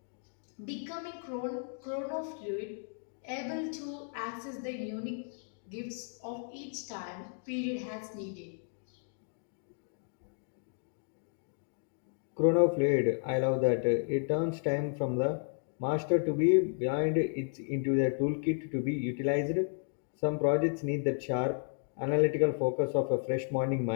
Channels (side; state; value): right; silent; 56 dB below the other